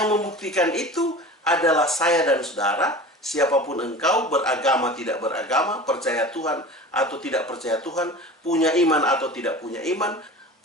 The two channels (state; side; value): normal; both; correlation 0.36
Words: membuktikan itu adalah saya dan saudara, siapapun engkau, beragama tidak beragama, percaya Tuhan atau tidak percaya Tuhan, punya iman atau tidak punya iman,